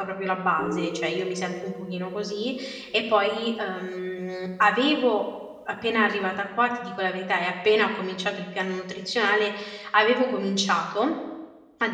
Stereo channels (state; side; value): identical; both; correlation 1.00